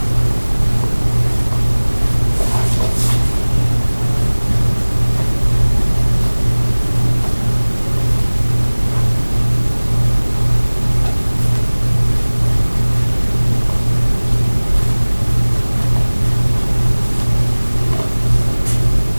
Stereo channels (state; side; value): inverted; both; correlation -1.00